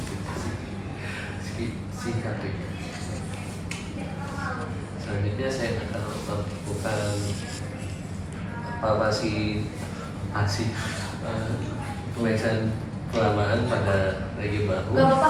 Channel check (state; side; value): identical; both; correlation 1.00